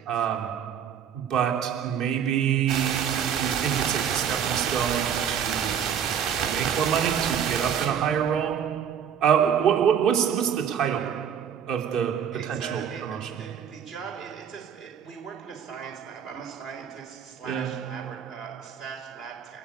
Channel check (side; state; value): left; quieter; 8.3 dB